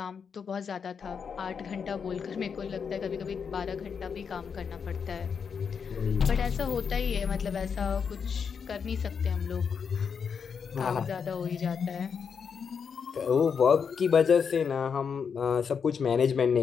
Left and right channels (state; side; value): quieter; right; 6.4 dB